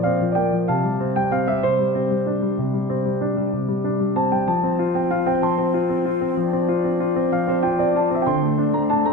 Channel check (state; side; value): normal; both; correlation 0.39